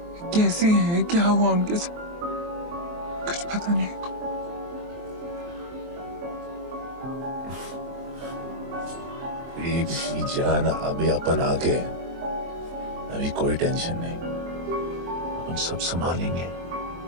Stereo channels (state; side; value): late; left; 23 ms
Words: कैसी है, क्या हुआ उनके साथ, कुछ पता नहीं। बेबी जान, अभी अपन आ गए, अभी कोई टेंशन नहीं, हम सब संभालेंगे।